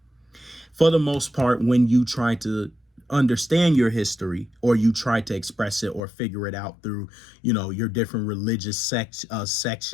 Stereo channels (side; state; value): right; drops out; at 6.0 s